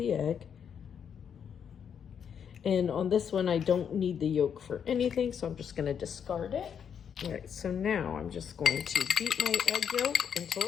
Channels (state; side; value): quieter; right; 7.8 dB